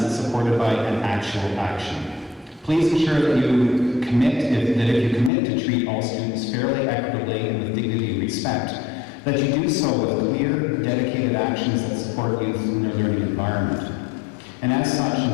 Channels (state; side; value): drops out; right; at 5.3 s